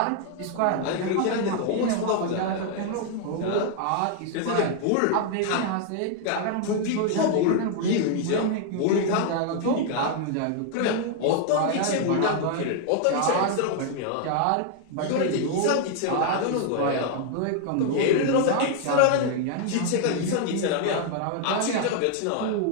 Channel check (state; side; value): different; both; correlation 0.00